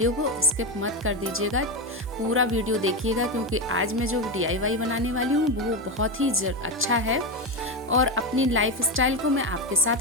को स्किप मत कर दीजिएगा, पूरा वीडियो देखिएगा, क्योंकि आज मैं जो DIY बनाने वाली हूँ वो बहुत ही अच्छा है और अपनी लाइफ स्टाइल को मैं आपके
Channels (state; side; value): normal; both; correlation 0.13